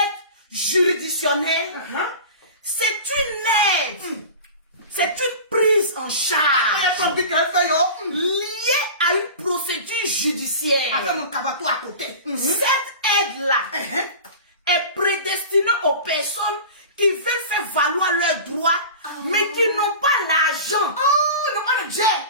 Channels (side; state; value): both; inverted; correlation -0.35